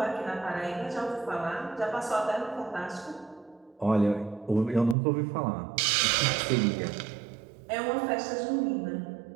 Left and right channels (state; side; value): drops out; left; at 5.0 s